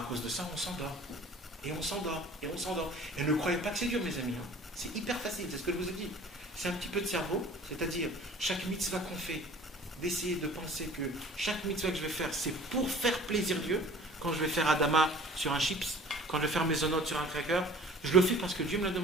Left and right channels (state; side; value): normal; both; correlation 0.47